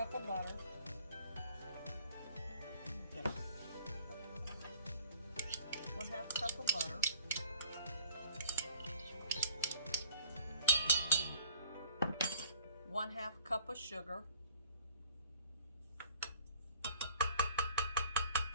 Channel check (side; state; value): both; inverted; correlation -0.52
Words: of butter. 1/2 cup of butter. 1/2 cup of sugar.